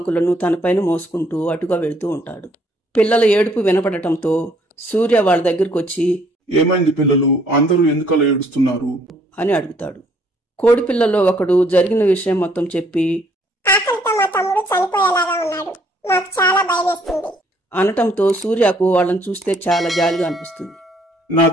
తనపైన మోసుకుంటూ అటుగా వెళుతూ ఉంటాడు. పిల్లల ఏడుపు వినపడటంతో సూర్య వాళ్ళ దగ్గరకు వచ్చి, ఏమైంది పిల్లలు, అందరూ ఎందుకలా ఏడుస్తున్నారు అని అడుగుతాడు. కోడిపిల్లలో ఒకడు జరిగిన విషయం మొత్తం చెప్పి ఆకలితో మా తమ్ముడు చనిపోయేలాగా ఉన్నాడు, మాకు చాలా భయమేస్తుంది అనటంతో సూర్యకు వాళ్ళని చూస్తే చాలా జాలిగా అనిపిస్తుంది. నా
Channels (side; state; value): both; normal; correlation 0.65